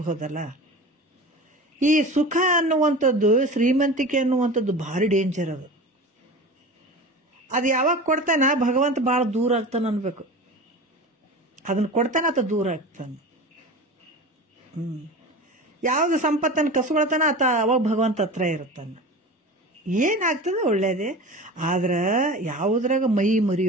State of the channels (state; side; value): normal; both; correlation 0.33